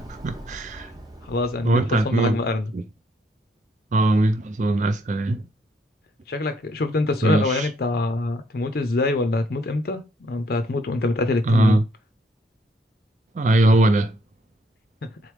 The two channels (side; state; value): both; normal; correlation 0.70